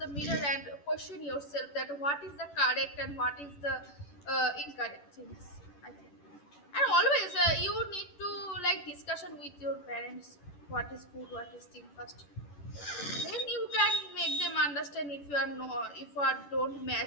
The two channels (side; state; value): right; late; 11 ms